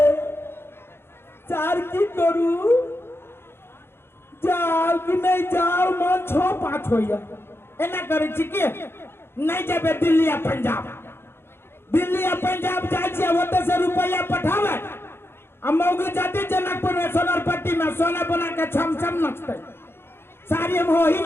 चार की करू जाओ कि नहीं जाओ मन 6-5 होइया एना करे छी के नहीं जाबे दिल्ली या पंजाब जाय छै ओते से रुपया पठावे मौगी जाते जनकपुर में सोनरपट्टी में सोना बना के छम छम नचते साड़ी हम हो ही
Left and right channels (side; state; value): right; late; 0.11 ms